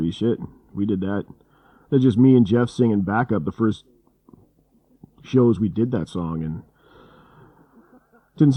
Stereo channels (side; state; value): both; identical; correlation 1.00